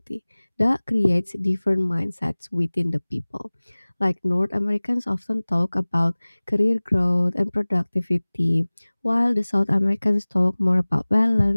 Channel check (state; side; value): inverted; both; correlation -1.00